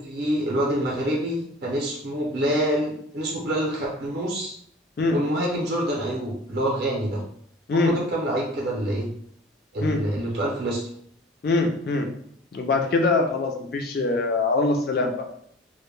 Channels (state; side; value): normal; both; correlation 0.43